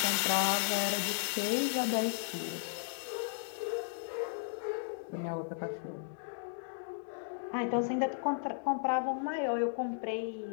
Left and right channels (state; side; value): silent; right; digital silence